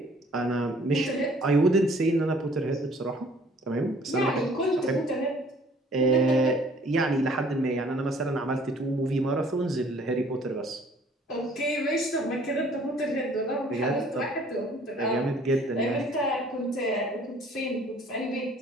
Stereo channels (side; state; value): both; normal; correlation 0.56